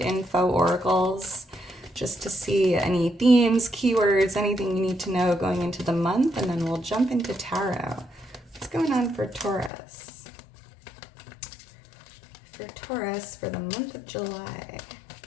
oracles just to see any themes, keywords, anything you need to know going into the month, and then we'll jump into tarot. What's going on for Taurus? For Taurus for the month of July.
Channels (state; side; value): drops out; right; at 9.7 s